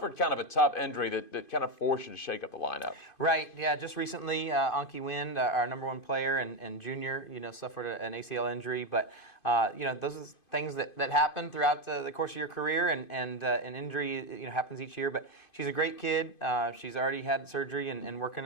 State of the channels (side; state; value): right; late; 2.5 ms